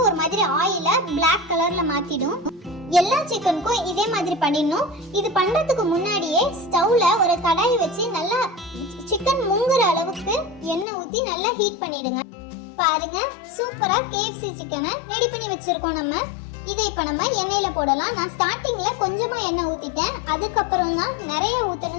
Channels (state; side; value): drops out; right; at 10.9 s